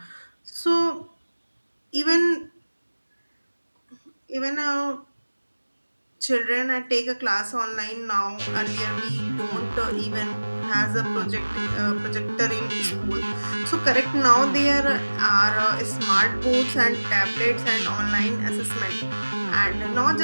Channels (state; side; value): inverted; both; correlation -1.00